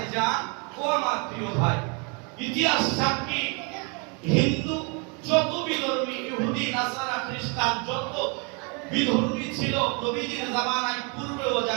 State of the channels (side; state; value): left; quieter; 33.8 dB